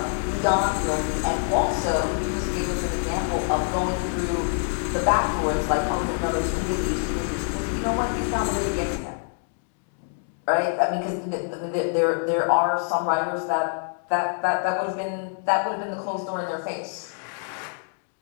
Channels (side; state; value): right; silent; 61 dB below the other